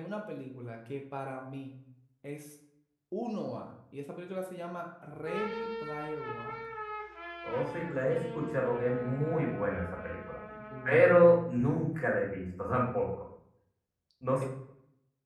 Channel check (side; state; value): both; identical; correlation 1.00